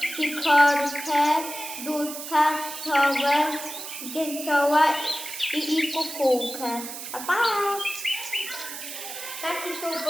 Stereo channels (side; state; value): right; noise; hiss, 9 dB below the sound